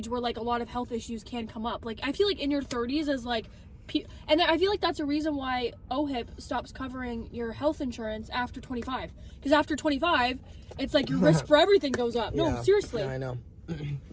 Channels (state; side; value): identical; both; correlation 1.00